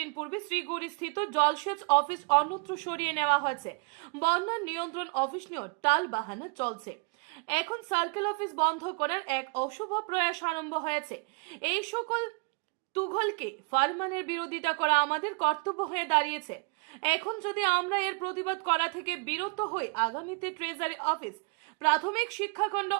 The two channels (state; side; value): quieter; left; 32.5 dB